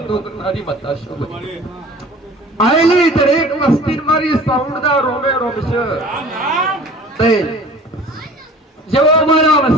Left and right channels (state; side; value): normal; both; correlation 0.45